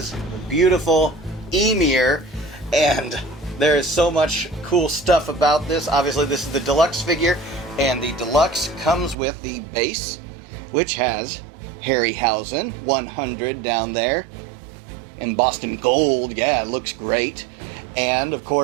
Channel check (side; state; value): left; drops out; at 9.2 s